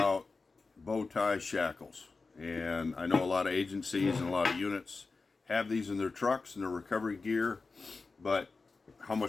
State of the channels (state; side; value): quieter; right; 4.1 dB